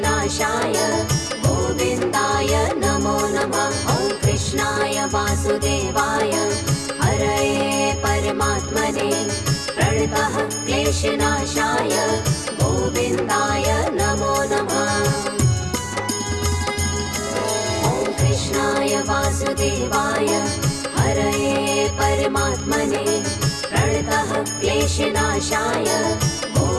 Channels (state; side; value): noise; right; rumble, 26 dB below the sound